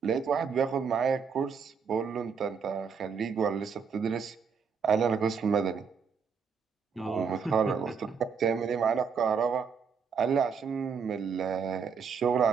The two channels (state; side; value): quieter; left; 6.1 dB